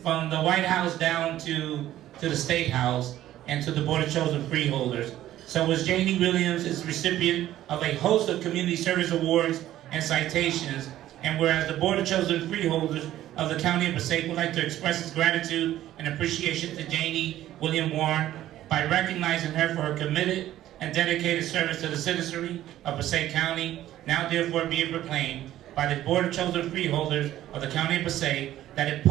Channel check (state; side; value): quieter; left; 13.4 dB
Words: the White House down to the State House and to the Board of Chosen Freeholders. So as J.D. Williams is recipient of a host of community service awards and citations, and whereas the Board of Chosen Freeholders of the County of Passaic would like to express its gratitude and appreciation to J.D. William Warren by recognizing her for her committed and dedicated service to the citizenry of Passaic County, now therefore be it proclaimed by the Board of Chosen Freeholders of the County of Passaic that it